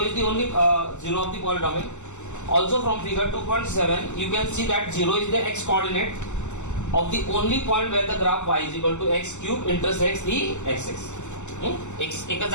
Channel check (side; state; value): right; late; 0.84 ms